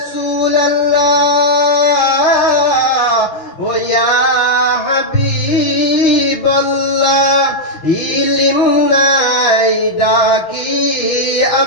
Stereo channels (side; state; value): right; late; 6.4 ms